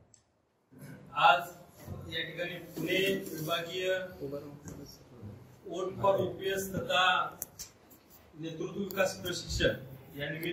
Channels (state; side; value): identical; both; correlation 1.00